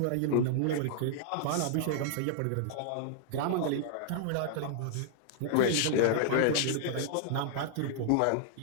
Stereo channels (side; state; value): both; different; correlation -0.01